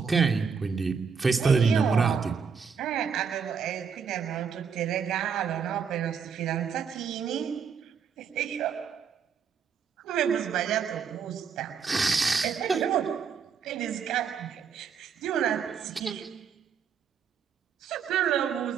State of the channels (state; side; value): quieter; left; 6.5 dB